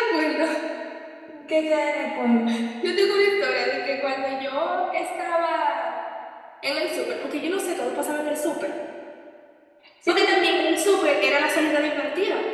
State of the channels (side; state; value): both; identical; correlation 1.00